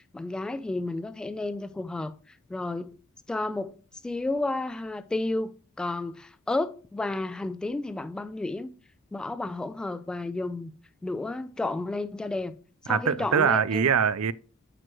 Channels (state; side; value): normal; both; correlation 0.51